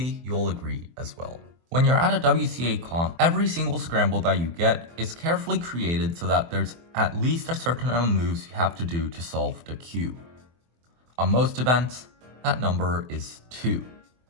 you'll agree as well. When you're at a WCA comp, every single scramble that you get is carefully created so that there's at least a certain amount of moves you have to do to solve the cube. On most events, that number is 2.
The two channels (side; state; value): left; late; 24 ms